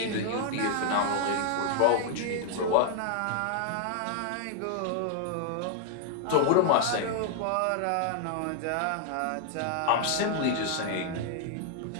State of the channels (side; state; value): both; different; correlation 0.00